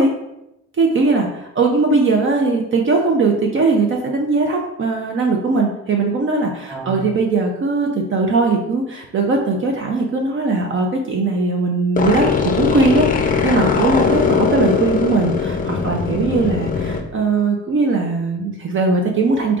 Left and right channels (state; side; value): normal; both; correlation 0.34